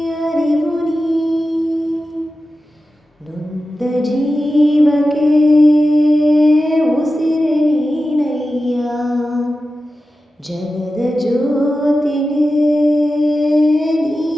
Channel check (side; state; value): both; normal; correlation 0.93